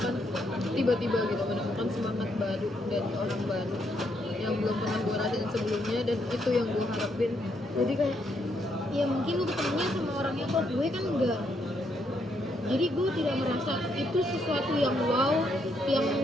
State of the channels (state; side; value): normal; both; correlation 0.75